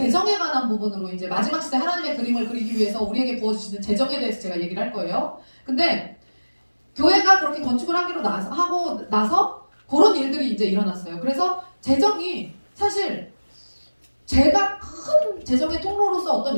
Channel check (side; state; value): both; inverted; correlation -1.00